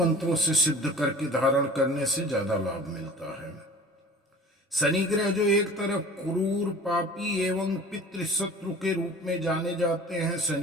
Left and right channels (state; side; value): normal; both; correlation 0.42